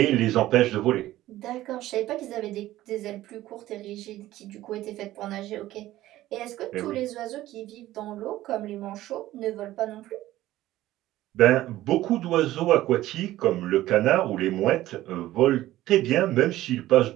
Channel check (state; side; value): quieter; left; 15.2 dB